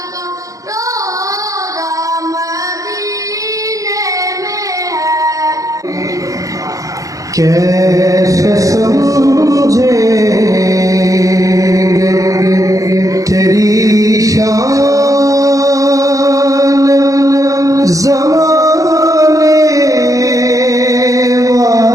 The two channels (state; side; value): late; left; 0.16 ms